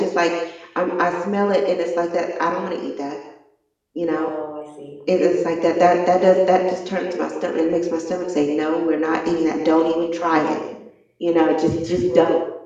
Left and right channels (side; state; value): both; identical; correlation 1.00